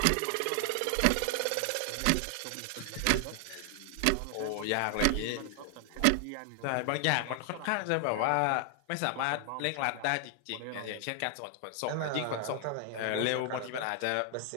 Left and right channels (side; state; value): both; different; correlation 0.00